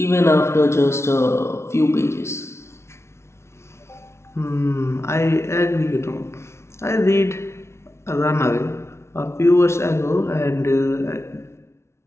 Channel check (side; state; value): right; late; 0.13 ms